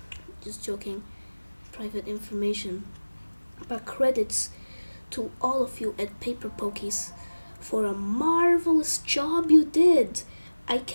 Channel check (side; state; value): both; inverted; correlation -1.00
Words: just joking, private information. But credits to all of you at Paper Pokies for a marvelous job you did. I